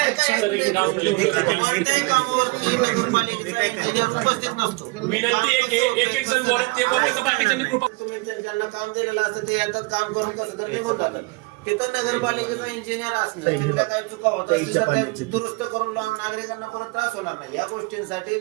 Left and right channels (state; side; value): quieter; left; 26.3 dB